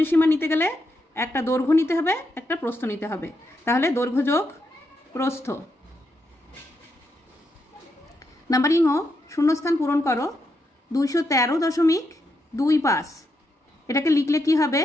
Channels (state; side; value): normal; both; correlation 0.82